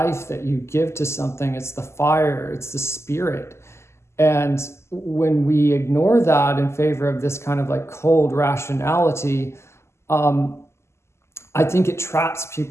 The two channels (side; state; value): right; late; 0.13 ms